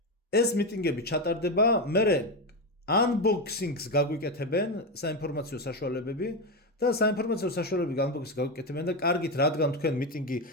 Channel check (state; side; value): normal; both; correlation 0.12